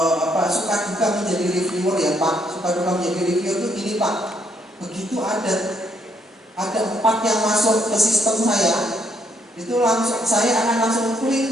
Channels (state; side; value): normal; both; correlation 0.72